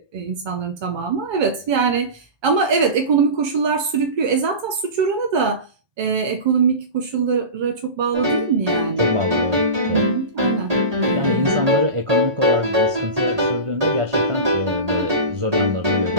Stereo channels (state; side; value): late; left; 1.2 ms